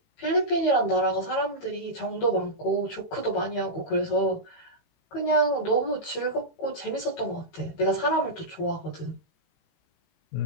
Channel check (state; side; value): late; right; 18 ms